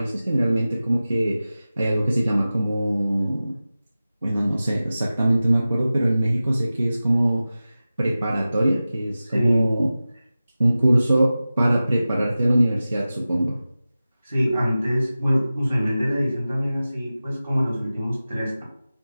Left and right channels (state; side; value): inverted; both; correlation -0.96